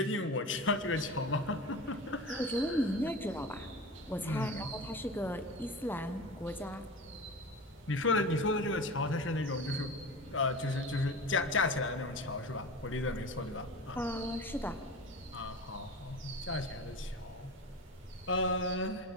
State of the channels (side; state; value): both; normal; correlation 0.31